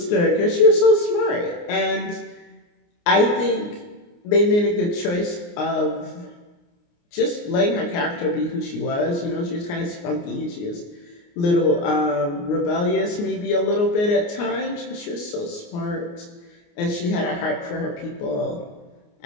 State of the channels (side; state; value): right; late; 29 ms